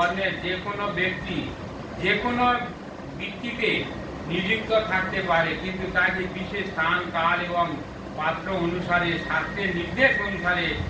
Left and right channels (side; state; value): both; identical; correlation 1.00